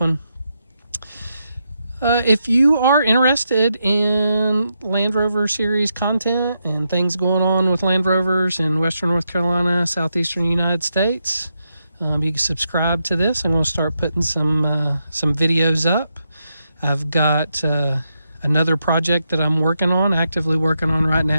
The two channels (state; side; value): inverted; both; correlation -0.84